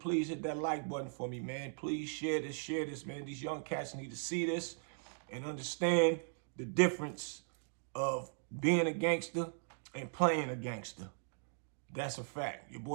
hit that like button for me, man. Please share this, man. These young cats need to see this and understand the difference of being a gangster and playing a gangster. That's a fact. Your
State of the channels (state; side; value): silent; left; digital silence